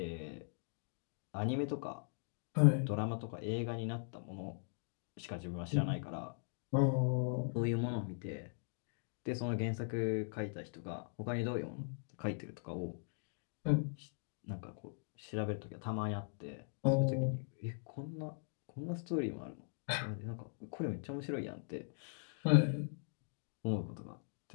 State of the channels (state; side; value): silent; right; digital silence